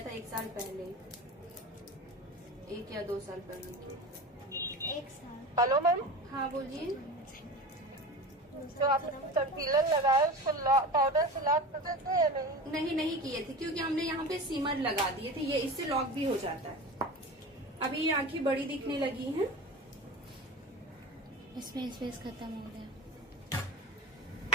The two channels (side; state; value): both; normal; correlation 0.31